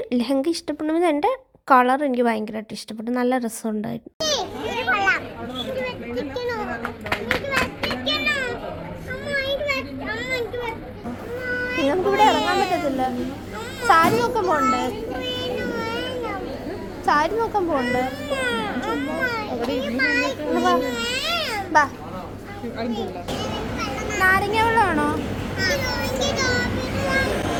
ലെഹങ്ക ഇഷ്ടപ്പെടുന്നത് എൻ്റെ കളർ എനിക്ക് ഭയങ്കരമായിട്ട് ഇഷ്ടപ്പെട്ടു, നല്ല രസമുണ്ടായിരുന്നു. നിങ്ങൾക്ക് ഇവിടെ ഇറങ്ങാൻ പറ്റത്തില്ല. സാരി നോക്കാൻ പോകണ്ടേ? സാരി നോക്കാൻ പോകണ്ടേ? നാരങ്ങ വെള്ളമാണോ?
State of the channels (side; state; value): both; identical; correlation 1.00